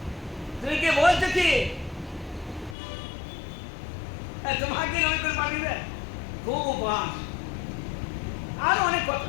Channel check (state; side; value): drops out; right; at 2.8 s